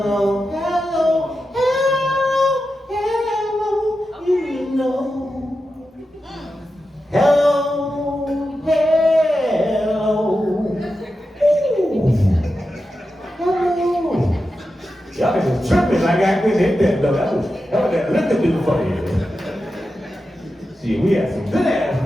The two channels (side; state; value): both; normal; correlation 0.90